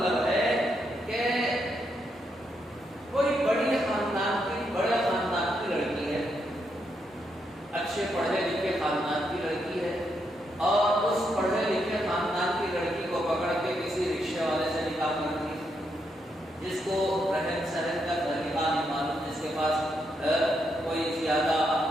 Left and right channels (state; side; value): normal; both; correlation 0.80